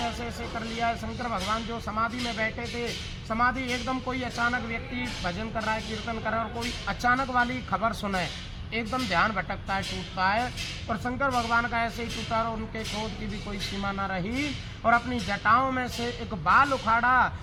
ऐसे ऐसे कर लिया है। शंकर भगवान जो समाधि में बैठे थे, समाधि एकदम कोई अचानक व्यक्ति भजन कर रहा है, कीर्तन कर रहा है और कोई अचानक वाली खबर सुने, एकदम ध्यान भटकता है, टूटता है। और शंकर भगवान का ऐसे ही टूटा और उनके क्रोध की भी कोई सीमा न रही और अपनी जटाओं में से एक बाल उखाड़ा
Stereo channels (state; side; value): identical; both; correlation 1.00